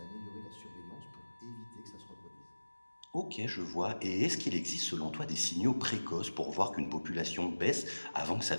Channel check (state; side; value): inverted; both; correlation -1.00